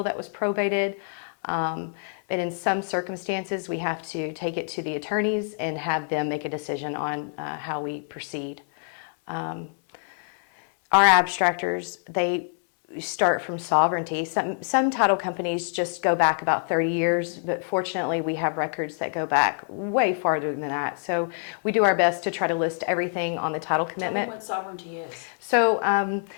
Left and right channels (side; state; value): right; silent; 61 dB below the other